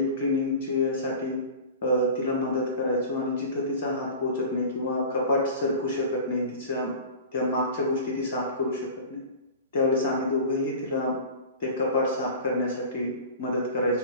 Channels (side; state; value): both; inverted; correlation -0.36